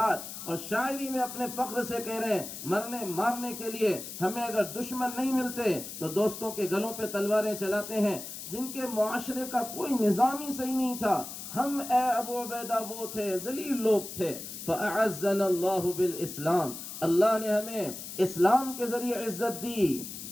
اور شاعری میں اپنے فخر سے کہہ رہے ہیں مرنے مارنے کے لیے ہمیں اگر دشمن نہیں ملتے تو دوستوں کے گلوں پہ تلواریں چلاتے ہیں، جن کے معاشرے کا کوئی نظام ہی صحیح نہیں تھا۔ ہم اے ابو عبیدہ وہ تھے، ذلیل لوگ تھے۔ فَأَعَزَّنَا اللَّهُ بِالْإِسْلَامِ، اللہ نے ہمیں اسلام کے ذریعے عزت دی،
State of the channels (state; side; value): noise; left; hiss, 10 dB below the sound